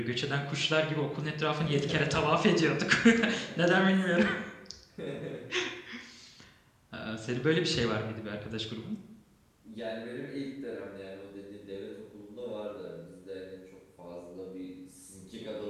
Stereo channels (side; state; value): both; identical; correlation 1.00